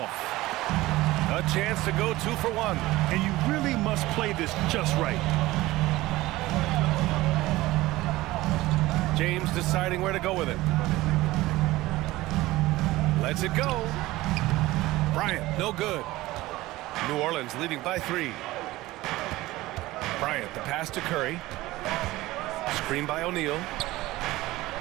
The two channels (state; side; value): quieter; left; 18.2 dB